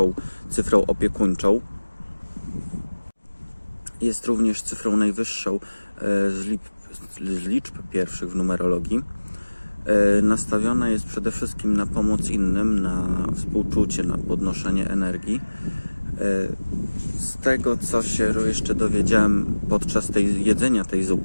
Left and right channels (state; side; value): inverted; both; correlation -1.00